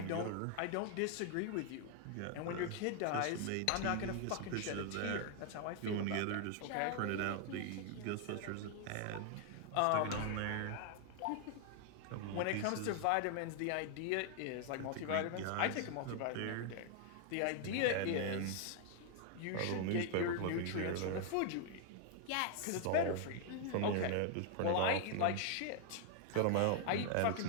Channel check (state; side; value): different; both; correlation 0.00